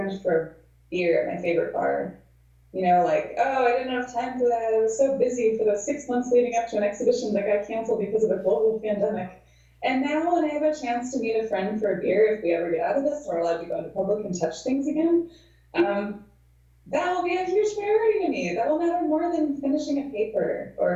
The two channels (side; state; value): both; identical; correlation 1.00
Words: for beer at my favorite bar. You know, like, oh, I didn't have time for that. I was so busy for those 6 months leading up to an exhibition that got canceled because of a global pandemic. And now when I have a chance to meet a friend for a beer, if we ever get out of this, we're allowed to go into public and touch things again, that will be a huge priority to me. That will matter more than finishing a paper